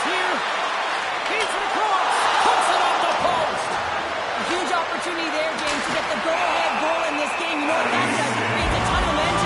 here. Feeds it across. Puts it off the post. A huge opportunity there, James, to get the go-ahead goal in this game. You know what that does? It creates a ton of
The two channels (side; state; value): both; identical; correlation 1.00